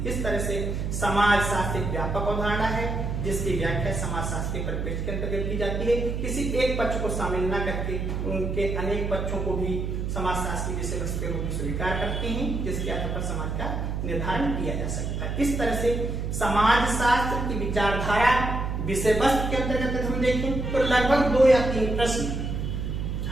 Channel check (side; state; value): right; noise; hum, 2 dB below the sound